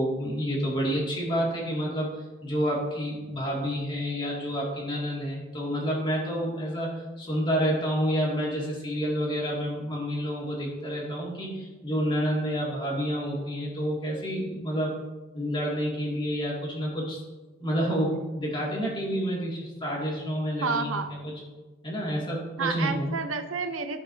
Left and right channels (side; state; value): both; normal; correlation 0.60